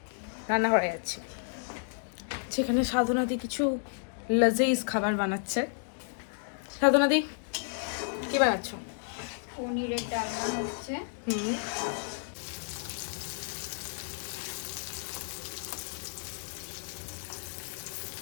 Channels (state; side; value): silent; right; digital silence